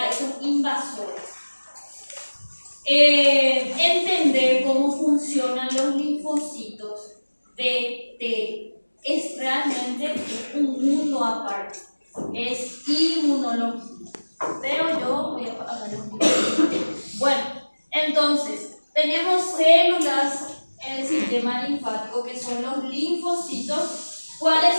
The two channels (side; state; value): both; inverted; correlation -1.00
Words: esos invasores. Entender cómo funcionan los linfocitos de T es realmente un mundo aparte. Es inmunología. Pero yo voy a hablar un poquito. Bueno, entonces, tenemos células en el sistema linfático que son los linfocitos.